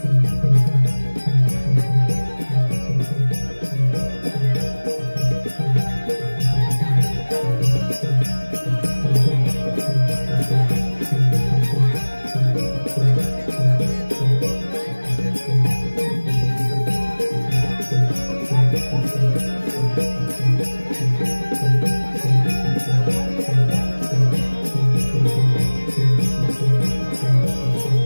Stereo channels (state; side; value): inverted; both; correlation -1.00